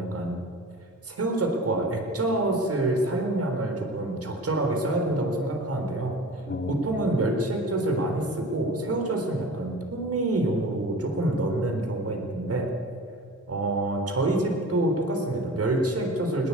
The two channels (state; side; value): normal; both; correlation 0.38